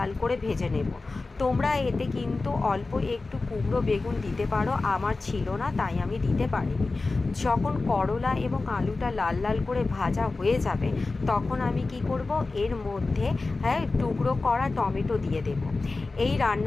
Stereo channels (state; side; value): quieter; right; 3.6 dB